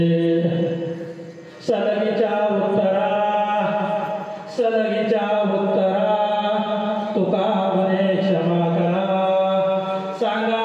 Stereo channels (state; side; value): identical; both; correlation 1.00